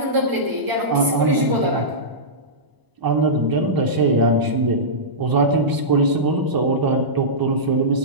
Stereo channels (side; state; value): left; late; 1.0 ms